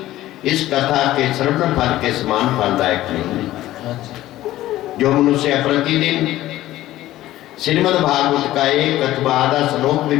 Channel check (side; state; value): right; quieter; 15.1 dB